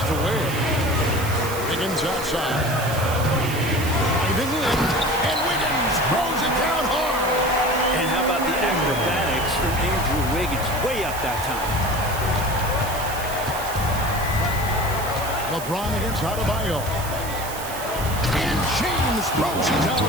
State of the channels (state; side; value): noise; right; hiss, 11 dB below the sound